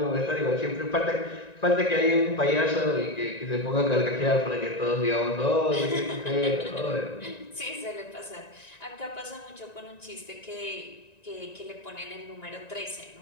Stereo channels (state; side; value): late; right; 1.9 ms